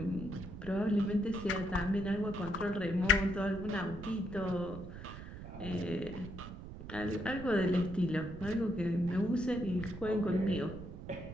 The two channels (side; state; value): right; noise; rumble, 11 dB below the sound